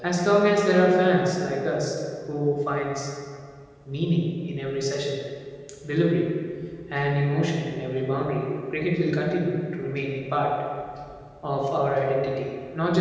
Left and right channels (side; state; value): both; identical; correlation 1.00